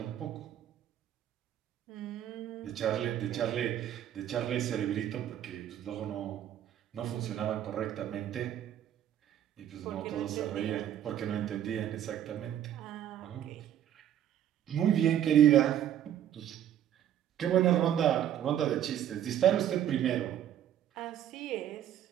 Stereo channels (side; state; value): left; quieter; 10.7 dB